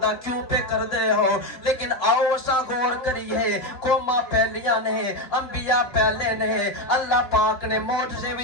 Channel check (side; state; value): right; late; 3.4 ms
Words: دا کیوں پہ کردے ہو، لیکن آؤ اسا غور کریے قوماں پہلیاں نے، انبیاء پہلے نے، اللہ پاک نے معجزے